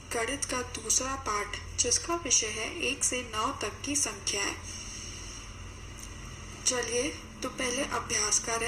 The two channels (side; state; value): both; identical; correlation 1.00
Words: गणित का दूसरा पाठ, जिसका विषय है 1 से 9 तक की संख्याएं। चलिए तो पहले अभ्यास